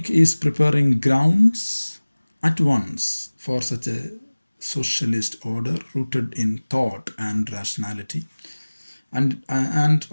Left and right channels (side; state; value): both; inverted; correlation -1.00